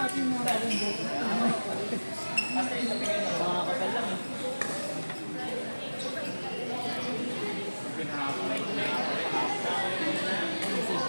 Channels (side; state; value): both; inverted; correlation -1.00